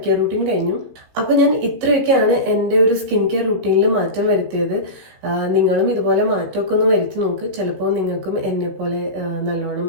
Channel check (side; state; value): left; late; 16 ms